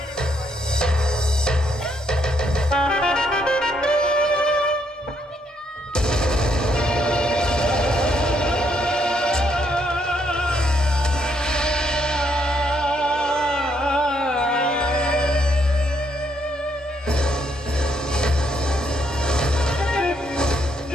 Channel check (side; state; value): both; normal; correlation 0.74